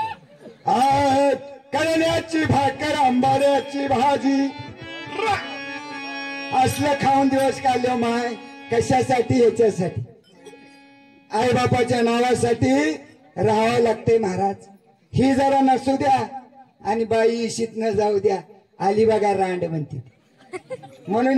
करण्याची भाकर आंबाड्याची भाजी. असलं खाऊन दिवस काढले माय. कशासाठी? याच्यासाठी आई बापाच्या नावासाठी राहावं लागते महाराज. ही जरा नसू द्या आणि बाई इशीत न जाऊ द्या. आली बघा रांड म्हणते.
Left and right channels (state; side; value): identical; both; correlation 1.00